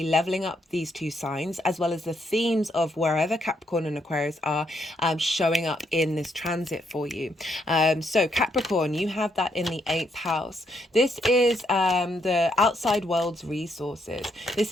leveling up these two signs, as well as the themes of wherever Capricorn and Aquarius are showing up in this transit for you. So Capricorn, you have that in the 8th house. This is the outside world's resources. This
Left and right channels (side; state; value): both; normal; correlation 0.76